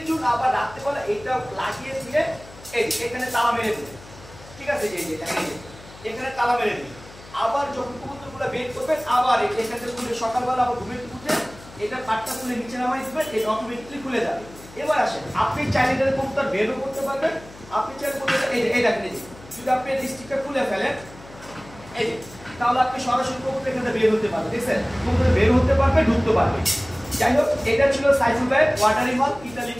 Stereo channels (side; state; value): left; noise; hum, 20 dB below the sound